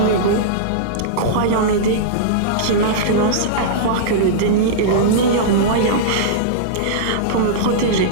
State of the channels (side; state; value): both; different; correlation -0.03